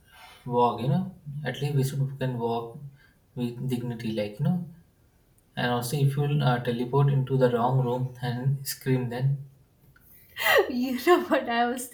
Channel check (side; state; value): both; identical; correlation 1.00